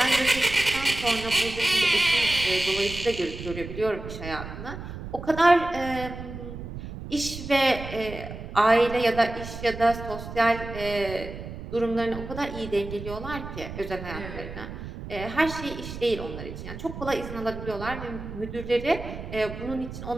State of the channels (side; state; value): right; noise; rumble, 10 dB below the sound